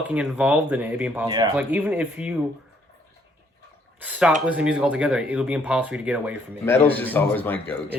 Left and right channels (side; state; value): both; normal; correlation 0.67